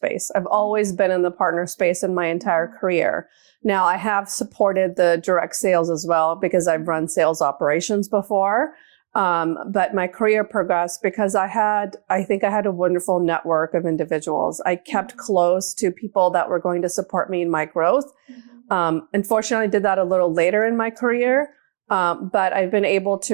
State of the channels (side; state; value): left; silent; 62 dB below the other